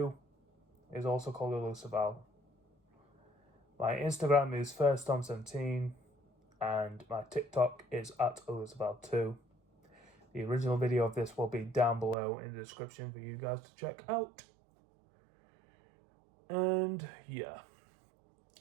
is also called ElusiveOwl. My Instagram is FirstTom17, and my TikTok is @ElusiveOwl2. The original video of this will be down below in the description for you guys to check out. And yeah.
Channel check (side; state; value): left; drops out; at 12.2 s